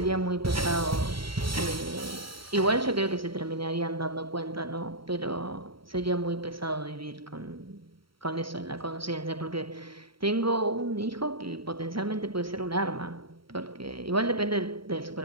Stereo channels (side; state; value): left; late; 0.74 ms